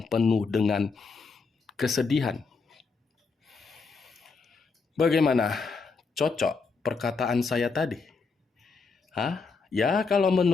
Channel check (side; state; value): right; quieter; 4.6 dB